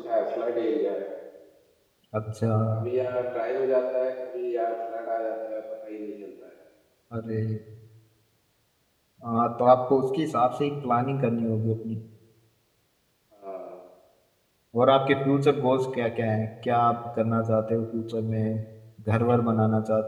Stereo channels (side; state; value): both; identical; correlation 1.00